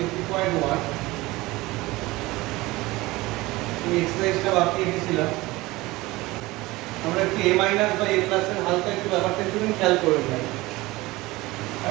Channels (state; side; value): quieter; left; 20.3 dB